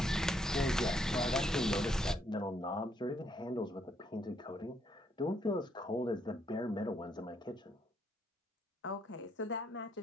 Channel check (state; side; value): normal; both; correlation 0.73